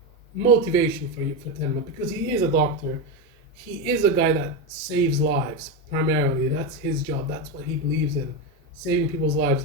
motivation for Tenma, because he is a doctor. He is a guy that saves lives primarily. That's his job. That's what he believes in, saving people's lives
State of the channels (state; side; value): normal; both; correlation 0.12